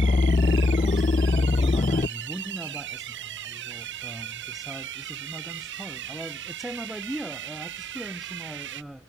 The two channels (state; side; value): normal; both; correlation 0.78